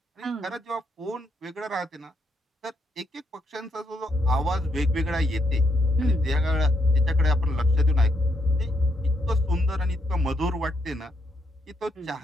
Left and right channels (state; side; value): normal; both; correlation 0.77